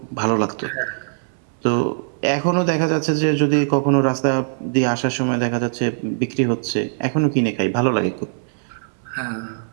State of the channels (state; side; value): silent; left; 60 dB below the other